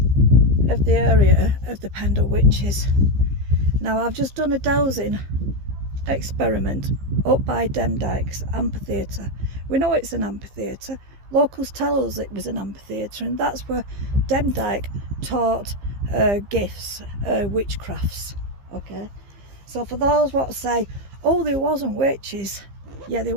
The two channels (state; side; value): late; left; 15 ms